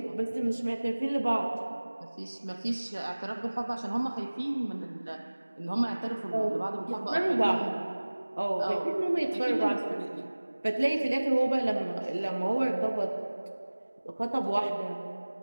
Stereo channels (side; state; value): both; inverted; correlation -1.00